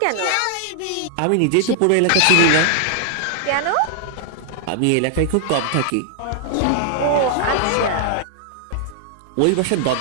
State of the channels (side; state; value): both; different; correlation 0.00